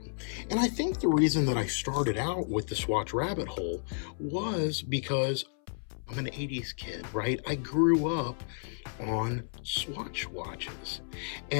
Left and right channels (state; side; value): silent; right; 57 dB below the other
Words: And I think the reason that I started out with the Swatch rabbit hole was because I'm an 80s kid, right? I grew up on Swatch watches.